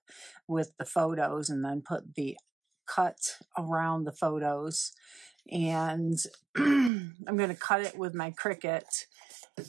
with the photos and then put the cut around the photos. And I'm going to cut it with my Cricut.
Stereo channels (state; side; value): drops out; left; at 6.9 s